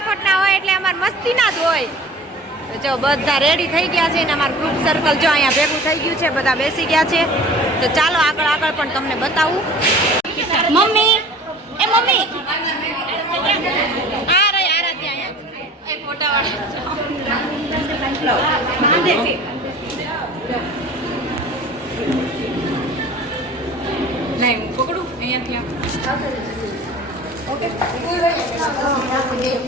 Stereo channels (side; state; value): both; normal; correlation 0.43